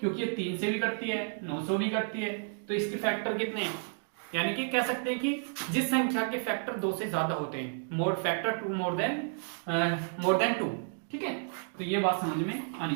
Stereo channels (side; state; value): left; silent; digital silence